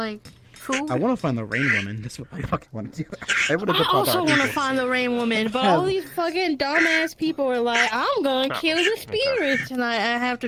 food? I want to find the rain woman. That's what I fucking want to do. I also want to find the rain woman, but all these fucking dumbass people are like, I'm gonna kill the spirits, and I have to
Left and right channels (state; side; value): identical; both; correlation 1.00